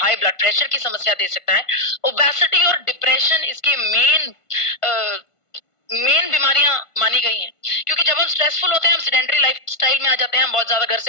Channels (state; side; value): late; right; 1.5 ms